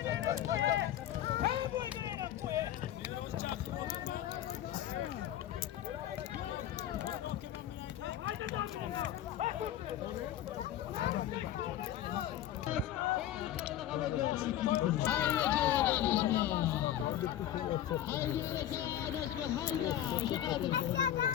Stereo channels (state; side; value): quieter; right; 11.7 dB